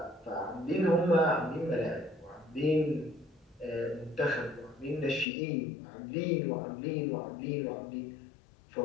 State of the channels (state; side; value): drops out; right; at 5.2 s